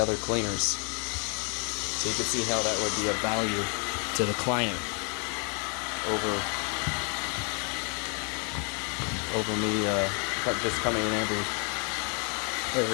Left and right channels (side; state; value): right; quieter; 37.8 dB